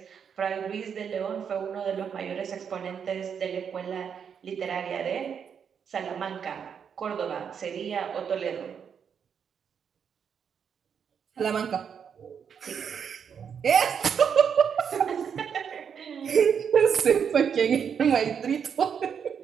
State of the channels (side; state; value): left; quieter; 7.3 dB